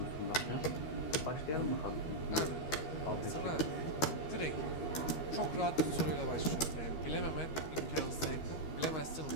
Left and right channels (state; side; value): late; right; 13 ms